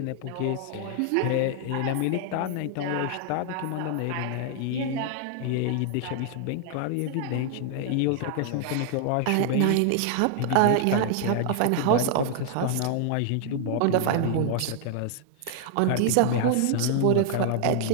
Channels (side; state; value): both; different; correlation 0.00